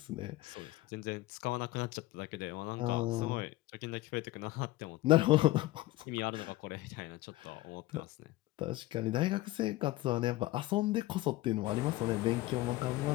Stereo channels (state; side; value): quieter; right; 17.7 dB